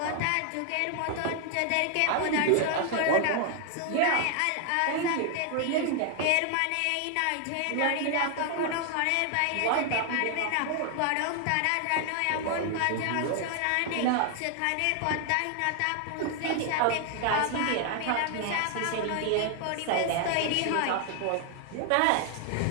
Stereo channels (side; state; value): both; different; correlation 0.00